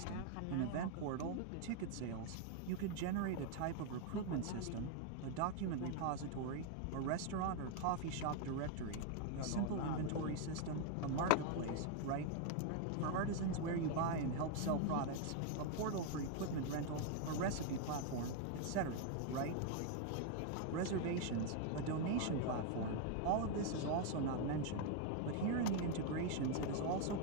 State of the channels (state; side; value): different; both; correlation 0.00